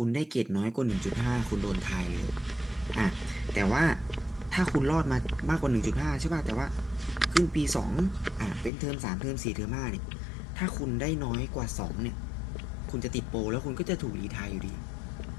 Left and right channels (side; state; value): right; drops out; at 8.7 s